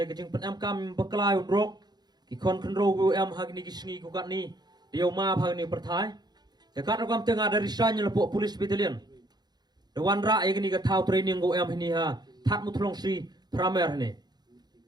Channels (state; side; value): late; left; 0.20 ms